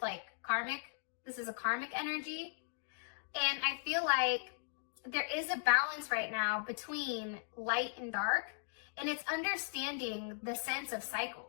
like karmic. This is a karmic energy. And I feel like there is a balance right now between light and dark. And it's understanding the sense of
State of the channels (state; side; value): silent; right; digital silence